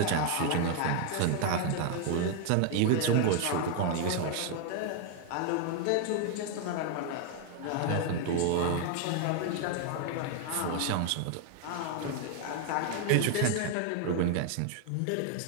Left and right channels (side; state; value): both; different; correlation 0.00